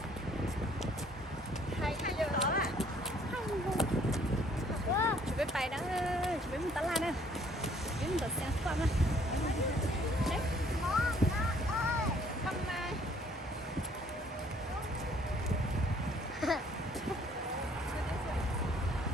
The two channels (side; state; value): both; normal; correlation 0.61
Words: Hay giờ đó à. Chuẩn bị bài đó, chuẩn bị một tala nè. Chuẩn bị một sáng qua nè. Đấy. Không mà.